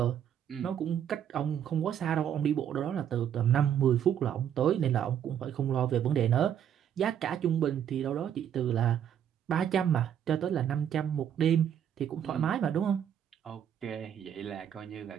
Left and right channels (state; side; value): quieter; left; 9.3 dB